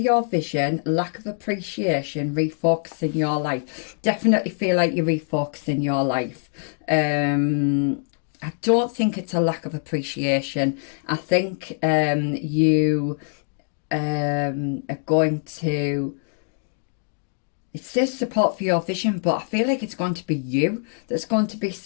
vision, lack of appreciation, refocusing your life. Definitely feel like you're refocusing your life. I don't think it's a lack of appreciation. I think you are going to... It says support for your vision, but I feel like it's going to be you that's going to be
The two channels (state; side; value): silent; right; digital silence